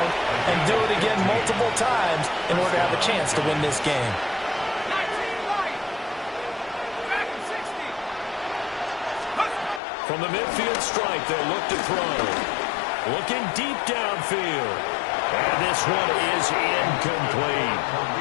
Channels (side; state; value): right; drops out; at 9.8 s